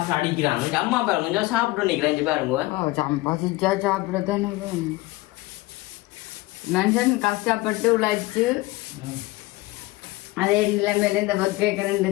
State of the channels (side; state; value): right; quieter; 20.2 dB